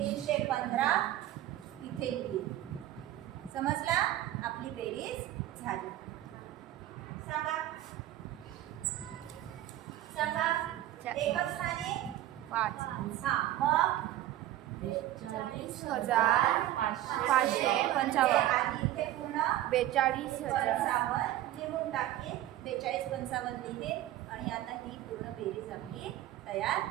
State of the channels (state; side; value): quieter; left; 13.8 dB